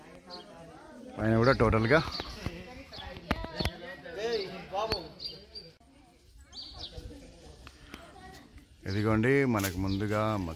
పైన కూడా టోటల్గా ఇదిగోండి. మనకు ముందుగా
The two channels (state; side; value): identical; both; correlation 1.00